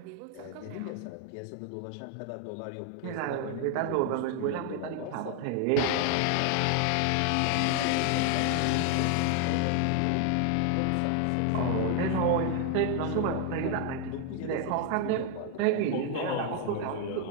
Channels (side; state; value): both; different; correlation 0.01